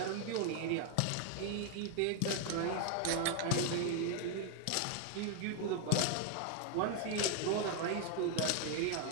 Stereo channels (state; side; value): different; both; correlation 0.01